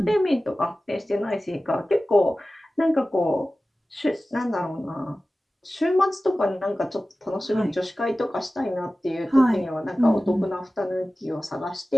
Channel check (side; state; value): both; normal; correlation 0.96